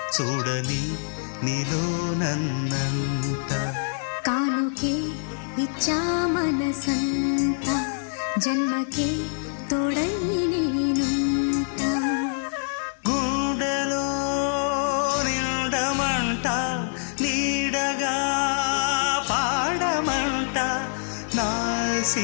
చూడని నీలో నన్నంట కానుకే ఇచ్చా మనసంత జన్మకే తోడై నేనుంటా గుండెలో నిండమంట నీడగా పాడమంట నా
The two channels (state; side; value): silent; right; 62 dB below the other